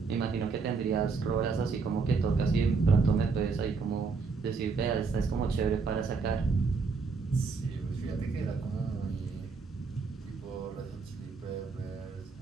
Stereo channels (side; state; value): left; quieter; 4.7 dB